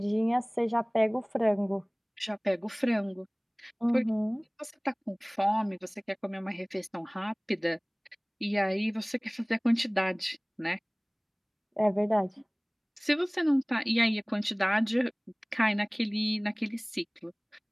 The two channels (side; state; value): both; identical; correlation 1.00